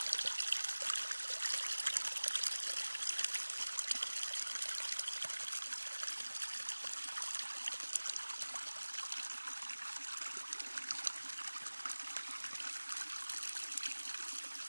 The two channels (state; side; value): inverted; both; correlation -1.00